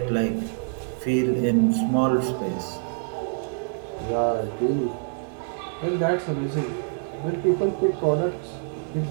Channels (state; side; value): silent; left; 61 dB below the other